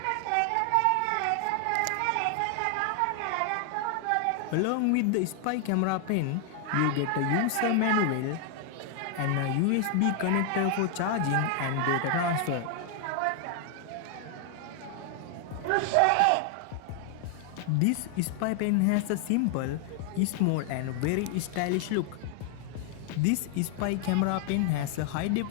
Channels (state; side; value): different; both; correlation 0.00